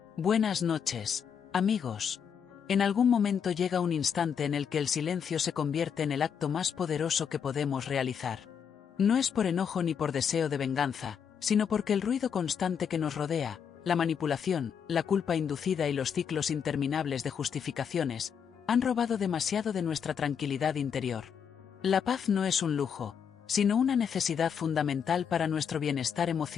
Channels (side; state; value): right; quieter; 7.4 dB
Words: Buenas noches, amigos. En algún momento llega un instante en el que el silencio se convierte en el acto más poderoso que podemos realizar. No es por enojo ni por deseo de venganza, sino porque el ruido constante que nos rodea, la manipulación, la culpa inducida y los ciclos interminables de justificaciones, han robado demasiado de nuestra tranquilidad interior. La paz no es un lujo, sino una necesidad fundamental para nuestro bienestar